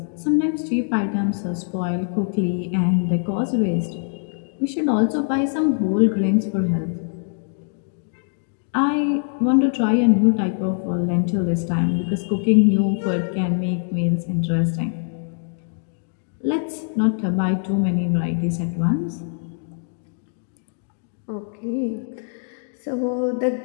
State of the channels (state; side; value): silent; right; 64 dB below the other